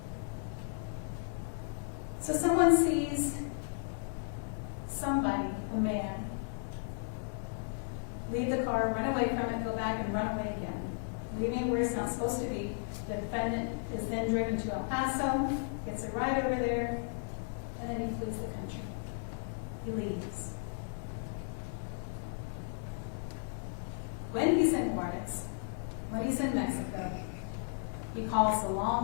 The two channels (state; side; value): silent; right; digital silence